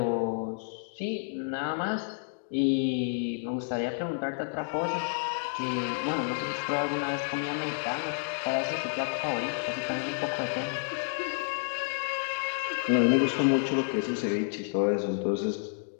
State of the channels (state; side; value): silent; right; digital silence